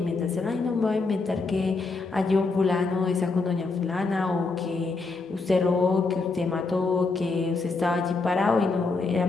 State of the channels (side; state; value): right; quieter; 3.8 dB